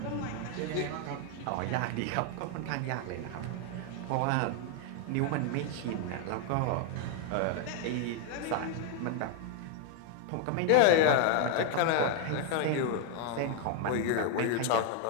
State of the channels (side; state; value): both; different; correlation 0.00